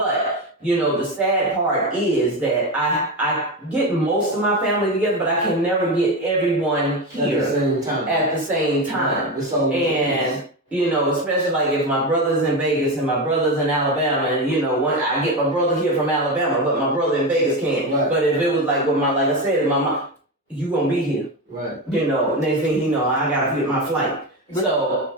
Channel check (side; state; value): both; normal; correlation 0.17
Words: you know, the sad part is that I get most of my family together, but I can never get everyone here at the same time. At the same time, It's always and You know, especially like if my brother's in Vegas and my brother's in Alabama, and you know, I get my brother here from Alabama, but my brother in Vegas can't. Right. But if it was like with like I said, my mom, you gonna be here. Right. You know, next thing you know, I gotta get my flight.